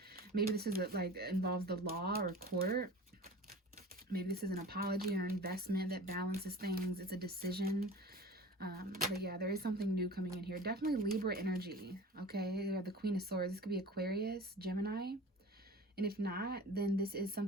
Maybe this is like involves the law or court. Maybe this is an apology or investment that balances things. It's a decision. But yeah, there is something new coming in here. Definitely Libra energy. Okay, you have the Queen of Swords. This could be Aquarius, Gemini. And if not, then this is some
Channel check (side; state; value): both; normal; correlation 0.39